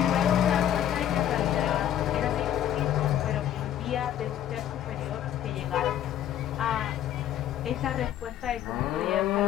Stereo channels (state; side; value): quieter; right; 11.0 dB